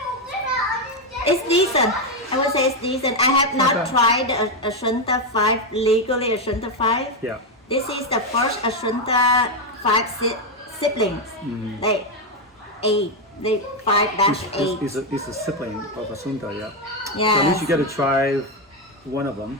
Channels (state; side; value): normal; both; correlation 0.06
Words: It's decent. I would say it's decent. I have not tried Asunta 5 legally. Asunta 5. Yeah. This is the first Asunta 5 siblings. Like 8. They 5-8. It's a sibling of Asunta, yeah. Yeah. So at least you get to try one of them.